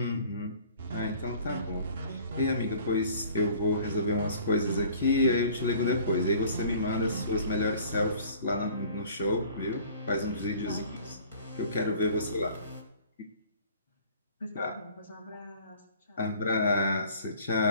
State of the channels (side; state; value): both; inverted; correlation -0.50